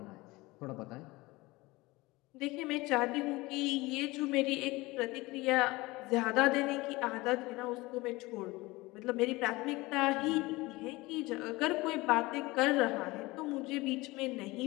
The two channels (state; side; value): quieter; right; 21.5 dB